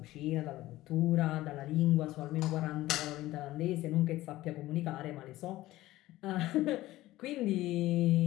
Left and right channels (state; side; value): quieter; right; 16.6 dB